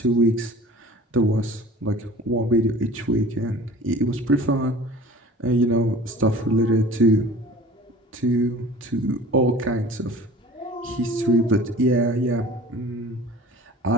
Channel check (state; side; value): normal; both; correlation 0.44